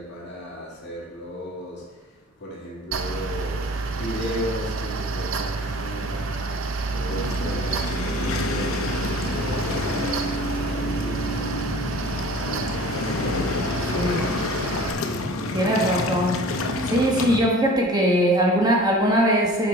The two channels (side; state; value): both; normal; correlation 0.44